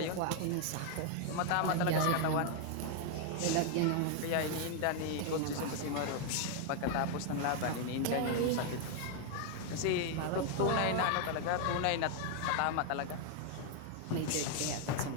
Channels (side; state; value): both; different; correlation 0.00